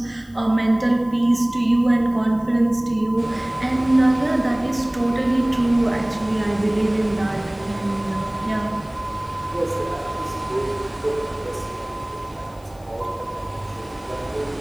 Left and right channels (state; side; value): noise; left; hiss, 28 dB below the sound